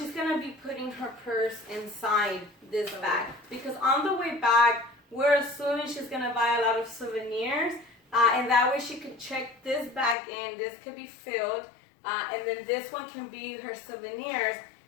going to be putting her purse inside this bag. Because on the way back, we're assuming she's going to buy a lot of souvenirs. And that way she could check this bag in. This could be filled. And then this one can be her souvenirs.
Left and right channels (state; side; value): drops out; right; at 10.2 s